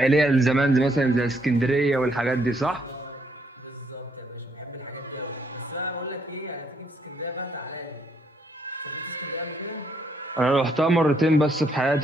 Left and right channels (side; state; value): both; normal; correlation 0.72